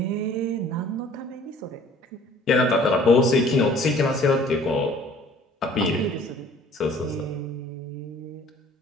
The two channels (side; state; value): both; normal; correlation 0.53